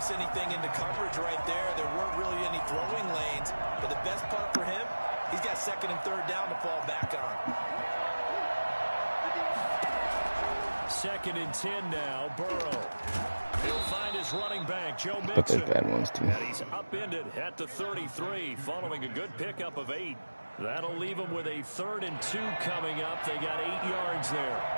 anything into coverage right there. There weren't really any throwing lanes, but the best part for him, he's got second and third down to fall back on. Second and 10 now, Burrow. He'll find his running back, Joe Mixon. But there's bad ones too. And he's upended at the 33, following a good pickup of 8. That'll leave them with a 3rd and 2 coming up. They got 8 yards there.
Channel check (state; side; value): inverted; both; correlation -1.00